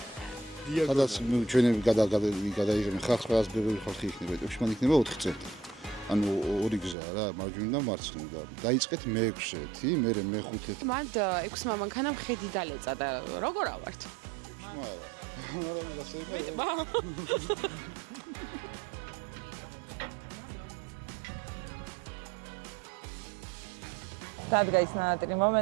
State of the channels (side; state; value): left; drops out; at 7.0 s